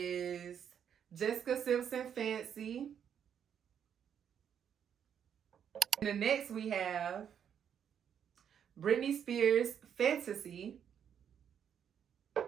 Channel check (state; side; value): quieter; left; 8.4 dB